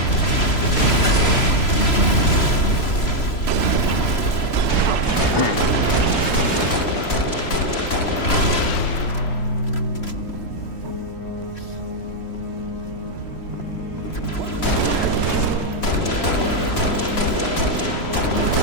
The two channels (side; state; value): right; late; 3.0 ms